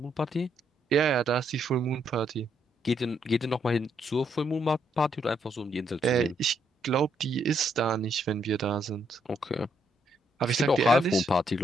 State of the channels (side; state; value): both; normal; correlation 0.74